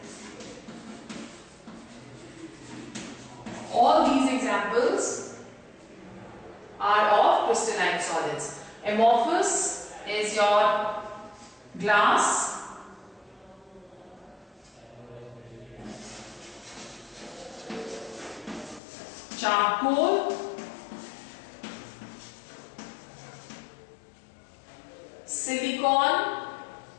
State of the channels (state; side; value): drops out; right; at 18.8 s